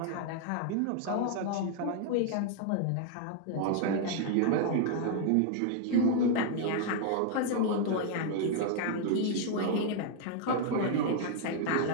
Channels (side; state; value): both; different; correlation 0.00